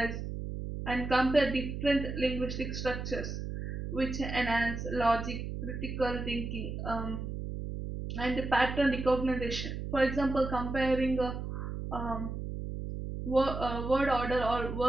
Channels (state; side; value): noise; right; hum, 5 dB below the sound